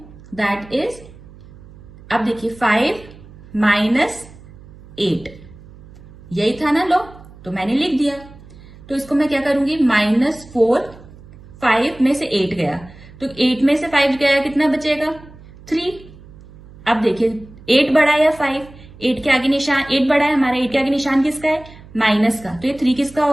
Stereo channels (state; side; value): noise; right; hum, 20 dB below the sound